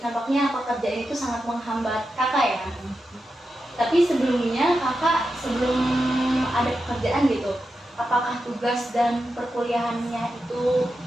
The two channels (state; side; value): normal; both; correlation 0.89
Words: pekerjaan itu sangat menghambat kakak ya. Tapi sebelumnya kakak sebelum ada pekerjaan gitu, apakah tugas dan perkuliahannya itu